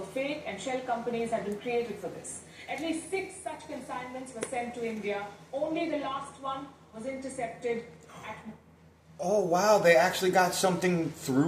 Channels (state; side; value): identical; both; correlation 1.00